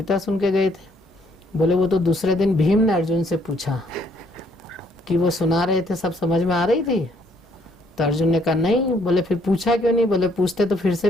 सुन के गए थे? बोले वो तो दूसरे दिन भीम ने अर्जुन से पूछा कि वो सुना रहे थे, सब समझ में आ रही थी? तो अर्जुन ने कहा नहीं। बोले फिर पूछा क्यों नहीं? बोले पूछते तो फिर से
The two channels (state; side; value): normal; both; correlation 0.67